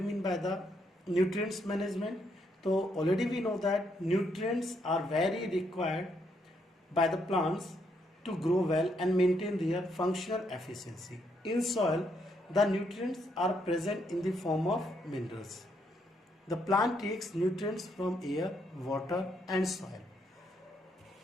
mean by the nutrients management. So already we know that nutrients are very required by the plants to grow well and maintain their functional efficiency. In soil, the nutrients are present in the form of minerals. The plant takes nutrients from air, water and soil.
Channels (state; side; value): normal; both; correlation 0.75